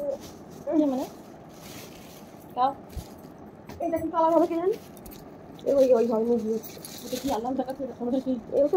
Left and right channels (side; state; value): both; identical; correlation 1.00